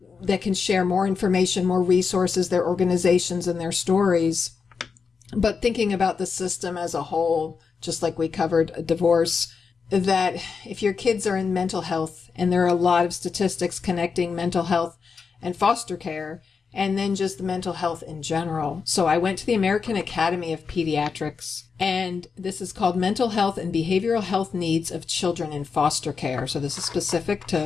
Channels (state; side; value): quieter; right; 5.5 dB